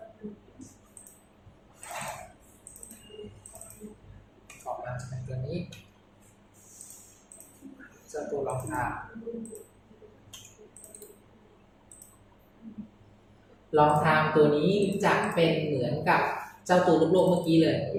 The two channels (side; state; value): both; identical; correlation 1.00